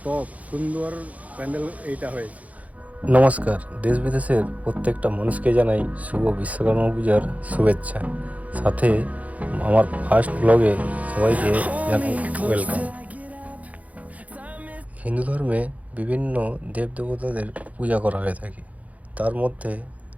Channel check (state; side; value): late; left; 0.070 ms